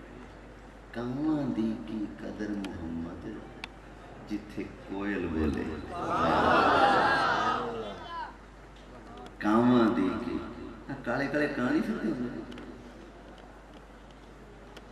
کاواں دی کی قدر محمد جتھے کوئل بولے کاواں دی کی کالے کالے کہانی پھرتے ہیں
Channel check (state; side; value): identical; both; correlation 1.00